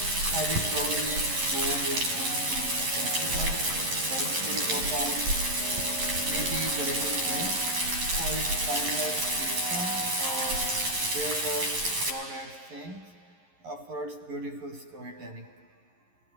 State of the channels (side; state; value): left; late; 11 ms